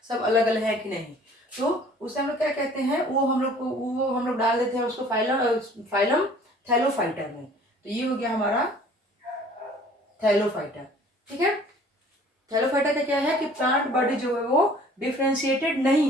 सब अलग अलग है कि नहीं। तो उसे हम लोग क्या कहते हैं? वो हम लोग डाल देते हैं उसको फाइलम थैलोफाइटा में। तो ये हो गया हमारा थैलोफाइटा। ठीक है, थैलोफाइटा का क्या है कि प्लांट बॉडी जो है वो डिफरेंशिएटेड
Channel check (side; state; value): both; normal; correlation 0.52